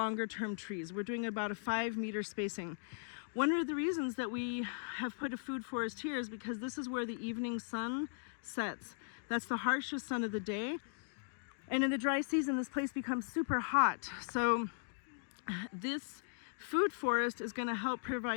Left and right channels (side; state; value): right; silent; digital silence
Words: trees. We're doing about a 5-meter spacing. One of the reasons that we have put a food forest here is because this is where the evening sun sets. That's the harshest sun of the day. And in the dry season, this place becomes super hot. So this food forest is going to help